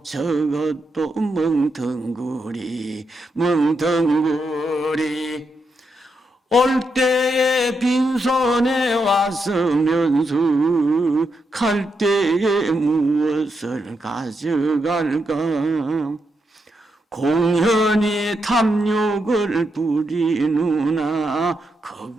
저것도 멍텅구리 멍텅구리 올 때에 빈손에 왔으면서 갈 때에 무엇을 가져갈까 공연히 탐욕을 부리누나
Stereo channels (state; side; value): normal; both; correlation 0.83